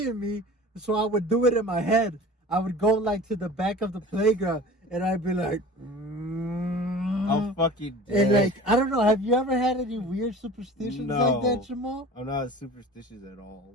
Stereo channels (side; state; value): both; normal; correlation 0.40